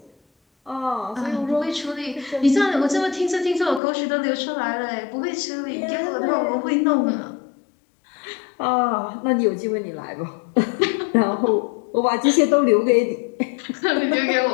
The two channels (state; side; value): drops out; right; at 3.8 s